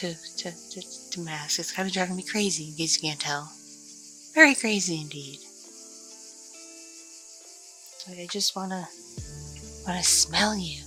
mask. It's kind of driving me crazy, in case you can't tell. Very crazy indeed. I just wanna smell you.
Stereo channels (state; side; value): identical; both; correlation 1.00